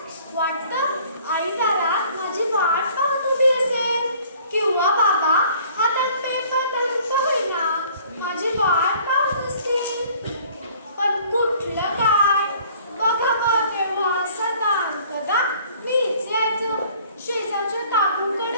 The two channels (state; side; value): inverted; both; correlation -0.54